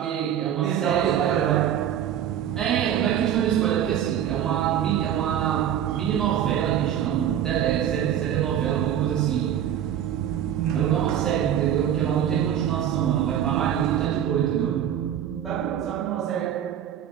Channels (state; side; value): quieter; left; 10.1 dB